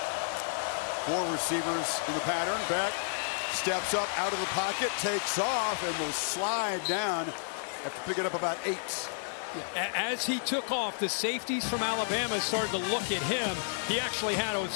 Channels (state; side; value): silent; right; digital silence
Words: 4 receivers in the pattern. Beck steps up out of the pocket, takes off, and will slide down after picking up about 8. Yeah, as he took off, the safeties from Alabama started to look at him. He actually had a